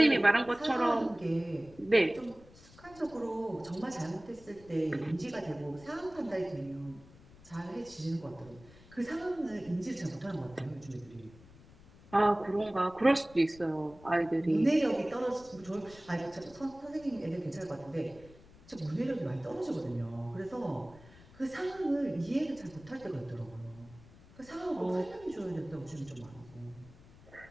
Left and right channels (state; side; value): noise; left; rumble, 22 dB below the sound